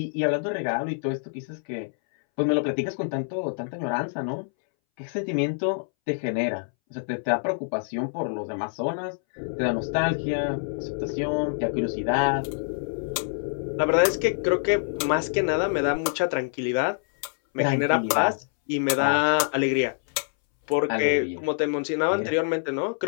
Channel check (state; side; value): silent; right; 61 dB below the other